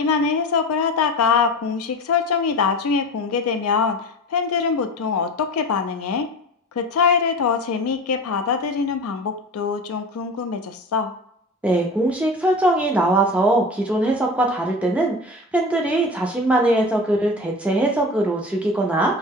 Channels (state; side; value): normal; both; correlation 0.33